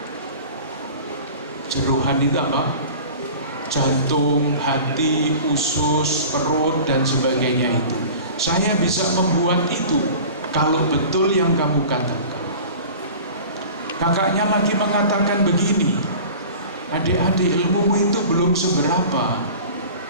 jerohan itu apa? Jantung, hati, usus, perut, dan sebagainya itu. Saya bisa membuat itu kalau betul yang kamu katakan. Kakaknya lagi mengatakan begini, adik-adik, ilmumu itu belum seberapa.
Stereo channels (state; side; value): inverted; both; correlation -0.40